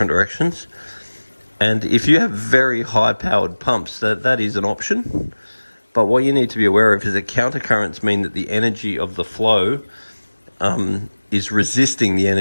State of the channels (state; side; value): inverted; both; correlation -1.00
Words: directions. And if you have very high powered pumps, that is an option. But what you need to be aware of is that counter currents mean that the energy of the flow is resisting the